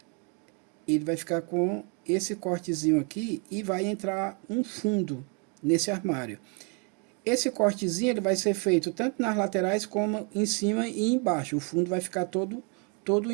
ele vai ficar com esse cortezinho aqui e vai entrar um fundo nesse armário. Esse cortezinho ele vai ser feito tanto nas laterais como em cima e embaixo. O fundo vai ficar todo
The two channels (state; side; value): quieter; left; 36.0 dB